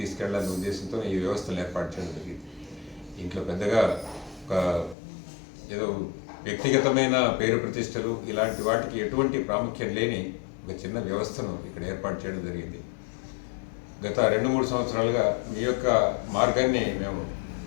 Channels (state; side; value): drops out; right; at 5.0 s